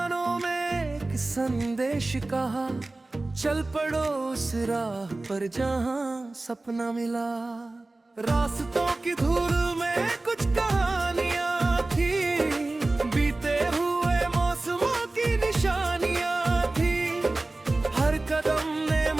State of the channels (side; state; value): left; quieter; 3.0 dB